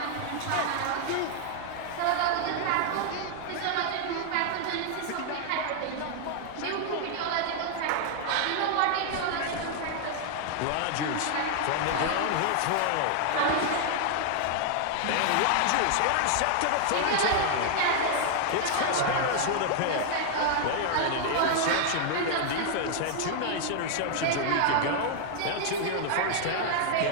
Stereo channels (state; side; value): different; both; correlation 0.00